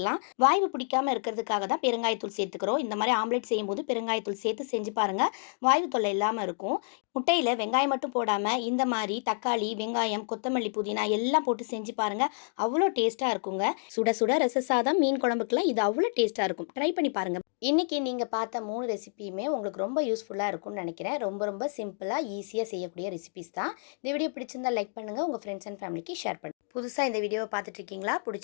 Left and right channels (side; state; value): right; silent; digital silence